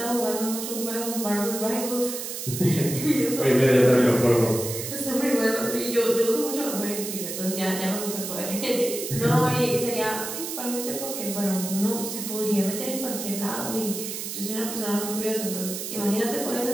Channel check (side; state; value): right; noise; hiss, 6 dB below the sound